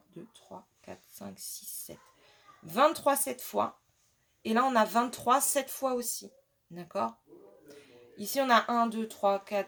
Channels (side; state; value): both; identical; correlation 1.00